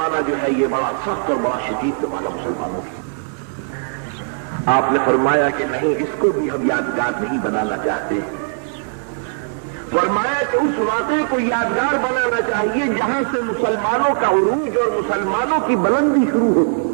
جو ہے یہ بڑا سخت اور بڑا شدید زمانہ مسلمانوں کی۔ آپ نے فرمایا کہ نہیں، اس کو بھی ہم یادگار نہیں بنانا چاہتے، فرمایا کہ اس واقعے کو یادگار بنانا چاہیے جہاں سے مسلمانوں کا عروج اور مسلمانوں کی بلندی شروع ہوتی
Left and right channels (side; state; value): left; silent; 66 dB below the other